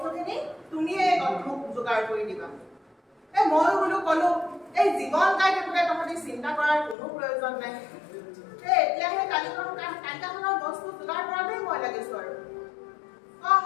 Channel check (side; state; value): right; drops out; at 7.0 s